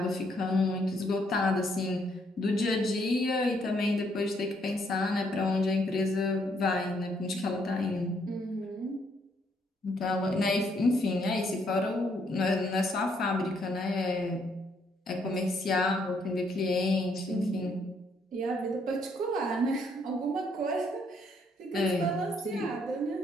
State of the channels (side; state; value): both; normal; correlation 0.71